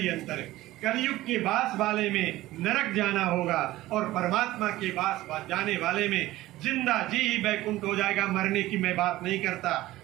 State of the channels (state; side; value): quieter; left; 16.7 dB